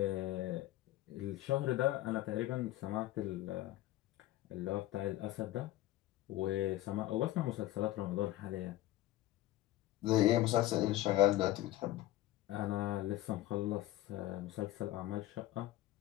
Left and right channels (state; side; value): quieter; right; 15.3 dB